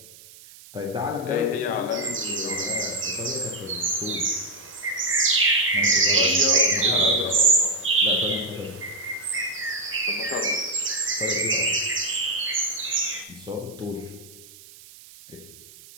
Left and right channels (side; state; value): right; noise; hiss, 21 dB below the sound